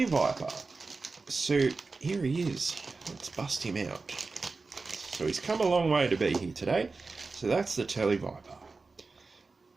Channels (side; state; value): left; quieter; 4.0 dB